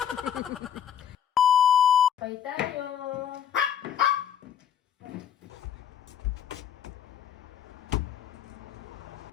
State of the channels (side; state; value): right; quieter; 9.0 dB